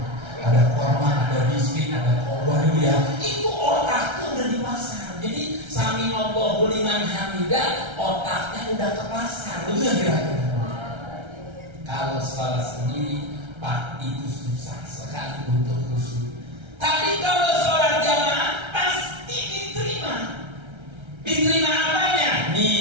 Ada korma, ada biskuit, ada kobar ya. Itu otaknya udah di pasar. Jadi sami Allahu liman hamidah, otaknya udah ke pasar. Betul kan kira-kira? Kalau salah sendiri, Pak, itu susah sekali untuk khusyuk. Tapi kalau sholat jamaah pasti diterima. Diterima apanya?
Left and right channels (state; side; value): late; left; 1.3 ms